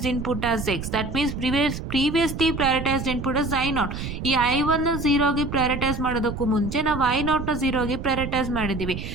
input as X. That means previously prioritized input as I0. ಈ I1 0ಗೆ prioritize ಮಾಡೋದಕ್ಕೂ ಮುಂಚೆ ನಾವು I0 0ಗೆ prioritize ಮಾಡಿದ್ದೀವಿ.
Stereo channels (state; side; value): noise; right; rumble, 6 dB below the sound